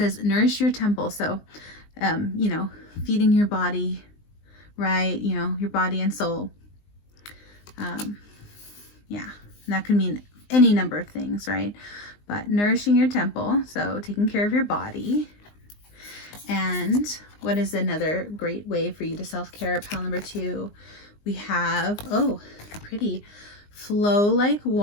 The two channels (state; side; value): late; right; 19 ms